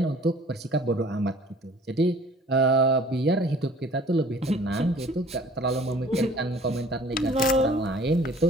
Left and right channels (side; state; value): both; normal; correlation 0.51